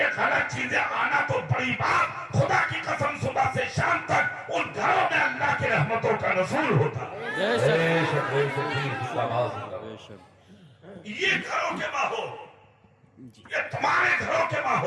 غلط چیزیں آنا تو بڑی بات، خدا کی قسم صبح سے شام تک ان گھروں میں اللہ کی رحمتوں کا نزول ہوتا ہے، یہ گھروں کے ماحول، یہ تمہارے گھروں کے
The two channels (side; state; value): both; identical; correlation 1.00